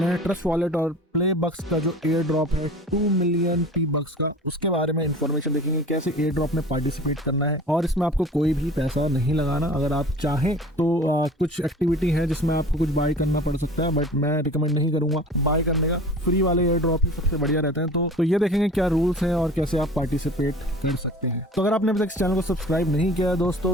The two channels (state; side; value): normal; both; correlation 0.41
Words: हैं ट्रस्ट वॉलेट और प्ले बक्स का जो एयर ड्रॉप है 2 मिलियन पी बक्स का, उसके बारे में इन्फॉर्मेशन देखेंगे, कैसे एयर ड्रॉप में पार्टिसिपेट करना है। और इसमें आपको कोई भी पैसा नहीं लगाना। अगर आप चाहें तो कुछ एक्टिविटी है जिसमें आपको कुछ बाय करना पड़ सकता है, बट मैं रिकमेंड नहीं करूंगा बाय करने का। फ्री वाले एयर ड्रॉप ही सबसे बढ़िया रहते हैं। तो ये देखेंगे क्या रूल्स हैं और कैसे आप पार्टिसिपेट कर सकते हैं। तो अगर आपने अभी तक इस चैनल को सब्सक्राइब नहीं किया है